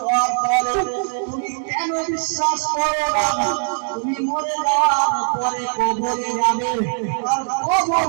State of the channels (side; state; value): left; silent; digital silence